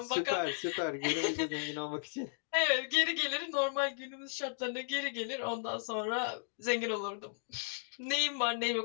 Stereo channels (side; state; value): right; silent; digital silence